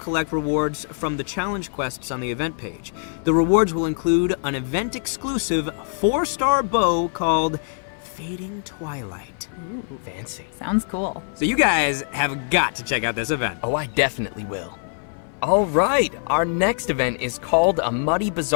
rewards from the challenge quests on the event page. The rewards will include an event-exclusive 4-star bow called Fading Twilight. Ooh, fancy. Sounds cool. So you guys have got to check out this event. Oh, I definitely will. All right, our next event is called a Muddy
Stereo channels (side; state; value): right; silent; 57 dB below the other